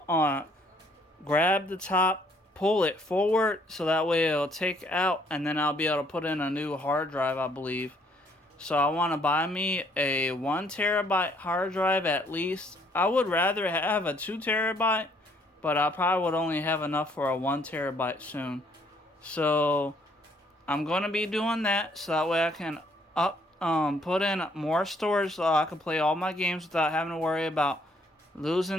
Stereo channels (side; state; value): both; normal; correlation 0.65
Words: grab the top, pull it forward, so that way it'll take out, and then I'll be able to put in a new hard drive, I believe. So I want to buy me a 1 terabyte hard drive at least. I would rather have a 2 terabyte, but I probably would only have enough for a 1 terabyte soon. So I'm going to be doing that, so that way I can put in more storage so I can play all my games without having to worry about